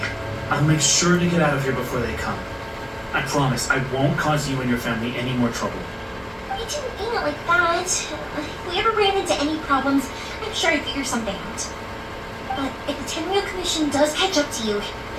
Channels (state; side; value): identical; both; correlation 1.00